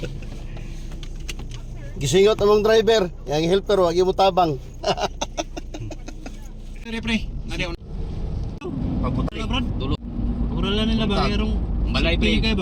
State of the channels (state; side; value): identical; both; correlation 1.00